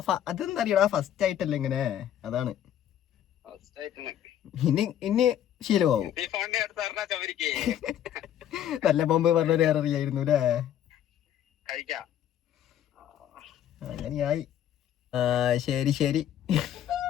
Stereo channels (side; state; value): right; quieter; 10.7 dB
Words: അതെന്താ അറിയടാ, ഫസ്റ്റ് ആയിട്ടല്ലേ ഇങ്ങനെ, അതാണ്. ഇനി ശീലമാവും. നല്ല ബോംബ് പറഞ്ഞൊരു അറിയായിരുന്നു അല്ലേ? അങ്ങനെയായി. ശരി